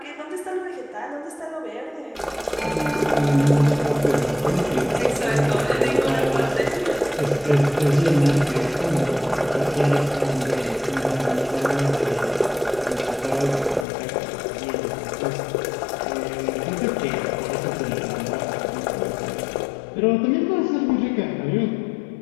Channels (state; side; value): drops out; right; at 13.9 s